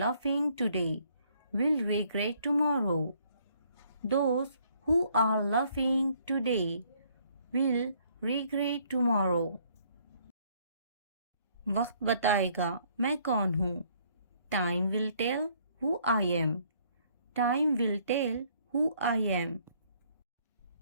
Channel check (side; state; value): both; inverted; correlation -0.65